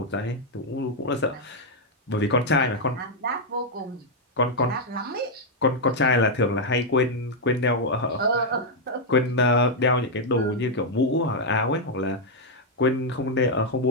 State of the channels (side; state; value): both; normal; correlation -0.02